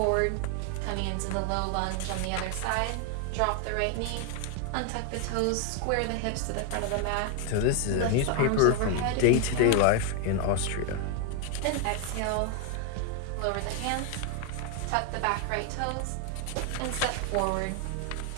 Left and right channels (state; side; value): different; both; correlation 0.00